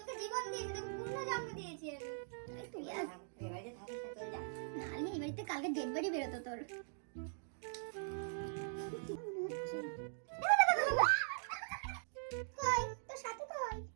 জীবন দিয়েছি, তোকে পূর্ণ জন্ম দিয়েছি আমি। তুই আর এবারে থাকিস না, চলে যা। নালি এই বাড়িতে কালকে ডেড বডি বেরোতো তোর। কই তোর সাথে কই?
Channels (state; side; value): silent; left; digital silence